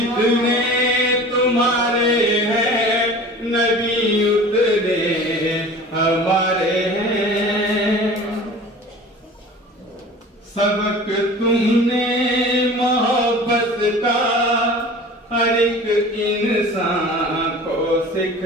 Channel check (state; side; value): normal; both; correlation 0.40